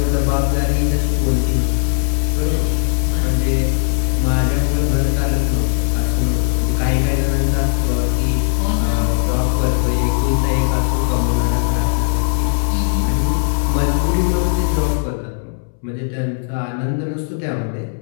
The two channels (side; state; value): right; silent; 68 dB below the other